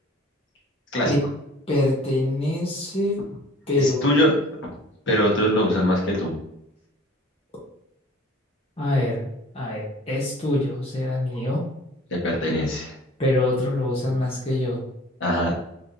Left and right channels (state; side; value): normal; both; correlation 0.48